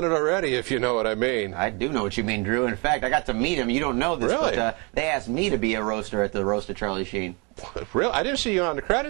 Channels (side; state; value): left; quieter; 30.9 dB